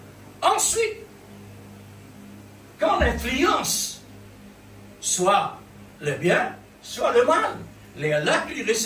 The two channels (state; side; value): identical; both; correlation 1.00